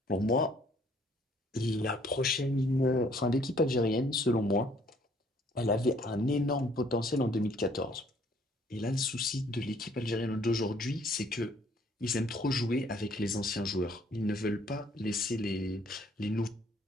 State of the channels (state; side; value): normal; both; correlation 0.62